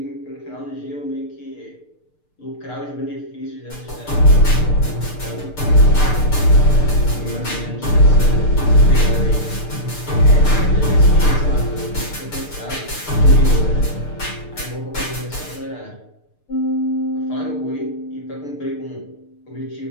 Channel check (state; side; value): late; right; 6.7 ms